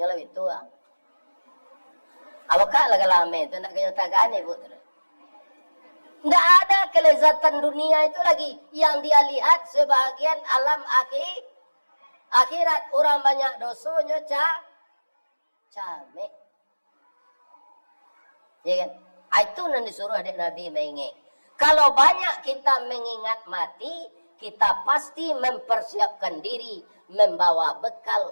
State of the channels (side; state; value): both; inverted; correlation -1.00